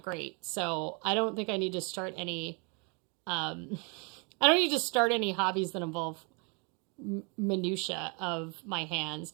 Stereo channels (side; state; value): left; quieter; 33.9 dB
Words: great. So I don't think I need to start any. Um, I don't need to start any hobbies that involve minutia of my hands.